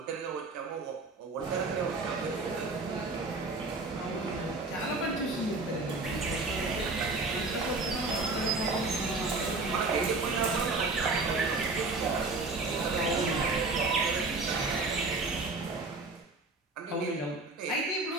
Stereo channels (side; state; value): left; quieter; 3.5 dB